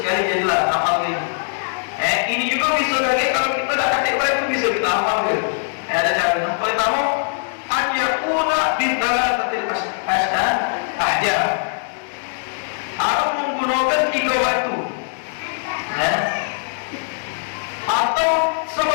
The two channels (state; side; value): silent; right; digital silence